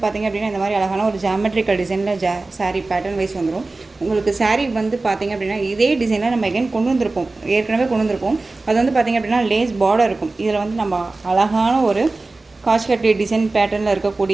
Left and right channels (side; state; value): left; quieter; 3.3 dB